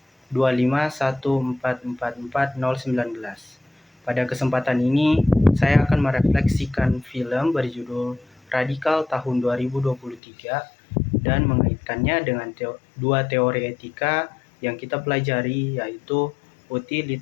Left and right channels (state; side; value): drops out; right; at 10.2 s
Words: 251444019. Pada kesempatan ini, saya akan merefleksikan film berjudul Radikal tahun 2023 dan mengaitkannya dengan dua teori etika yang kita pelajari, yaitu